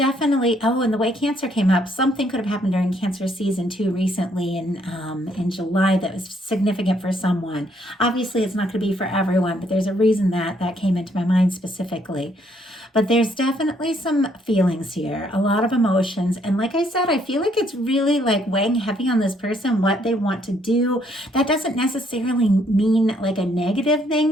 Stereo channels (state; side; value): normal; both; correlation 0.69